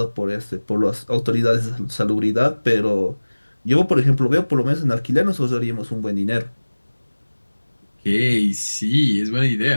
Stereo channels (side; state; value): both; inverted; correlation -1.00